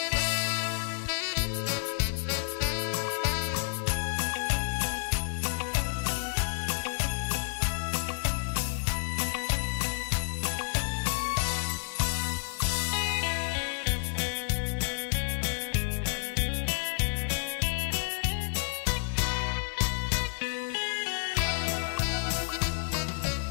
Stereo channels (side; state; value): right; silent; digital silence